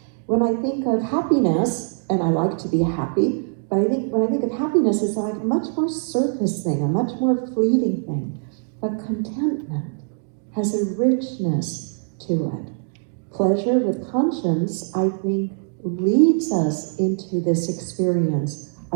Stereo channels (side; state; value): left; silent; 64 dB below the other